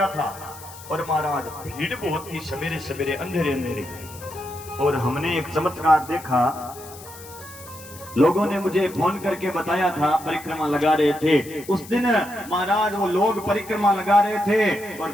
था और महाराज भीड़ बहुत थी, सवेरे सवेरे अंधेरे अंधेरे, और हमने एक चमत्कार देखा। लोगों ने मुझे फोन करके बताया था, परिक्रमा लगा रहे थे उस दिन महाराज, वो लोग परिक्रमा लगा रहे थे और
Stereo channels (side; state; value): left; noise; hiss, 17 dB below the sound